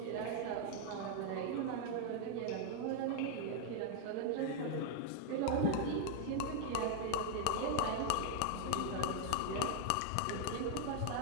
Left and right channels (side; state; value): both; different; correlation 0.00